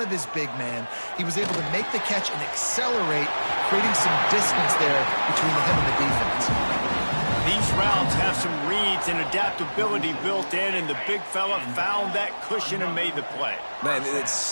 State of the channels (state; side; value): inverted; both; correlation -1.00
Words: of his big man, he was able to make the catch and accelerate, creating some distance there between him and the defense. These routes have some reads and adaptability built in, and the big fella found that cushion and made the play. Man, it's